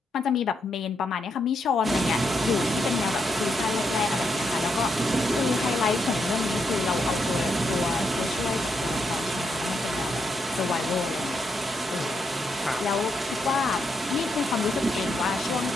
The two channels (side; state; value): both; normal; correlation 0.80